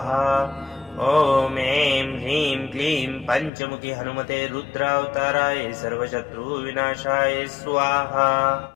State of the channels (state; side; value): drops out; right; at 3.5 s